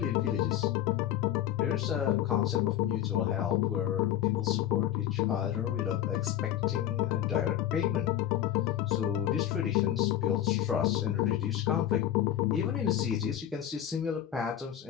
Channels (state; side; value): quieter; right; 11.5 dB